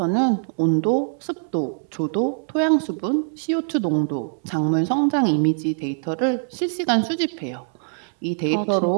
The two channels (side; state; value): left; silent; 64 dB below the other